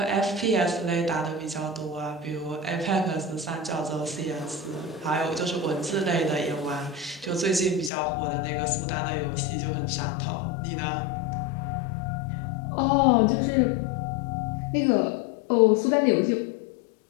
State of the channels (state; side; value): drops out; right; at 7.9 s